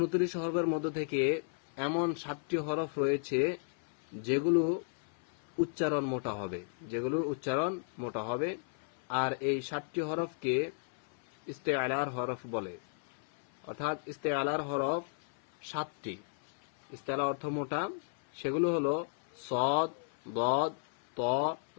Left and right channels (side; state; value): right; silent; 55 dB below the other